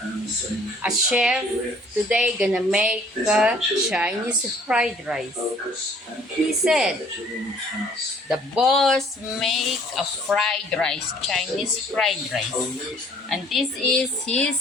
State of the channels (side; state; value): both; normal; correlation 0.57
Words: A chef today gonna make Chinese fried rice. He said the boss make a fried rice, Chinese fried rice. And this is